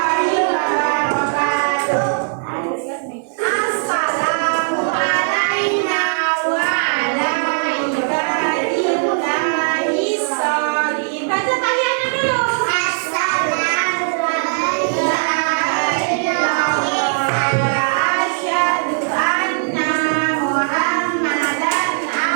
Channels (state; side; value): silent; left; digital silence